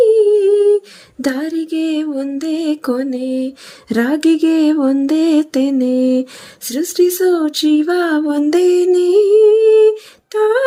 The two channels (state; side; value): identical; both; correlation 1.00